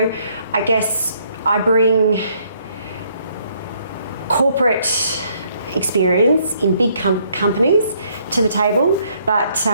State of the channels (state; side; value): inverted; both; correlation -0.68